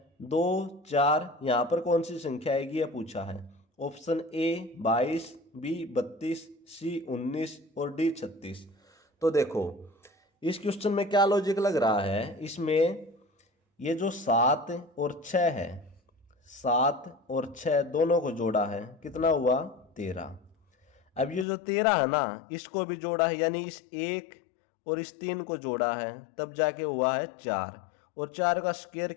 2, 4, यहाँ पर कौन सी संख्या आएगी यह पूछा है। ऑप्शन ए 22, बी 32, सी 19 और डी 36। तो देखो इस क्वेश्चन में क्या लॉजिक लग रहा है, इसमें ये जो 7 और 6 है, 7 और 6 दोनों को जोड़ा है, कितना हुआ 13। अब ये जो 13 है ना, इसको भी जोड़ा है, यानी इस 1 और इस 3 को जोड़ा है, तब जाके हुआ है 4, और 4 का स्क्वायर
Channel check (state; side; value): drops out; right; at 21.5 s